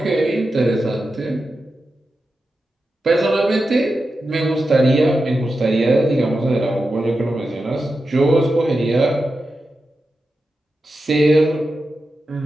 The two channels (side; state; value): both; normal; correlation 0.90